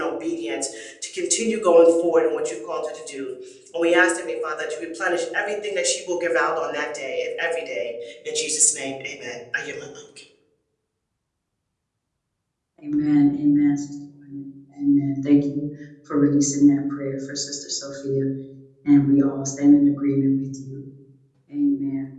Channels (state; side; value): identical; both; correlation 1.00